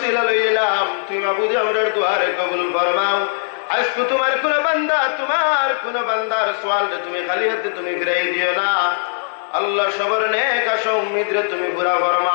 লইলাম, তুমি মাহবুদে আমরার দোয়ারে কবুল ফরমাও। আজকে তোমার কোন বান্দার সওয়াল তুমি খালি হাতে তুমি ফিরাই দিও না। আল্লাহ সবর নেক আশা উম্মিদ রে তুমি পুরা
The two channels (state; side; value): silent; right; digital silence